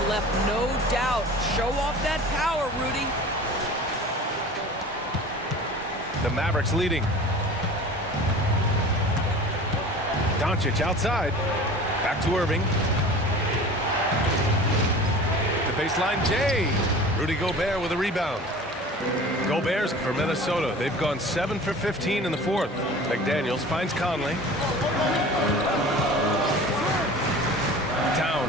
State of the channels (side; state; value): both; normal; correlation 0.40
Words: left no doubt. Show off that power, Rudy. The Mavericks leading. Doncic outside. Back to Irving. The baseline J. Rudy Gobert with a rebound. Gobert's for Minnesota. They've gone 7 for 15 in the 4th. McDaniels finds Conley.